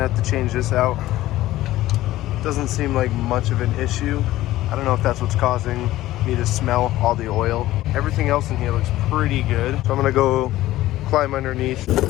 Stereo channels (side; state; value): right; quieter; 15.6 dB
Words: have to change this out. Doesn't seem like much of an issue. I don't know if that's what's causing me to smell all the oil. Everything else in here looks pretty good. So I'm gonna go climb underneath.